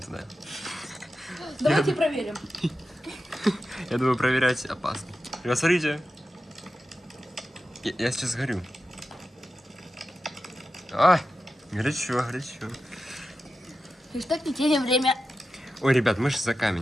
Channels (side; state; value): both; normal; correlation 0.91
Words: Давайте проверим. Я думаю, проверять опасно. Ребят, смотрите. Я сейчас горю. А, горячо, горячо. И что не теряем время. Ой, ребят, мы же за